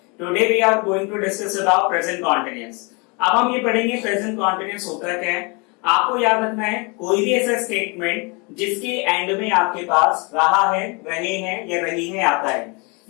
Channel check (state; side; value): quieter; right; 30.8 dB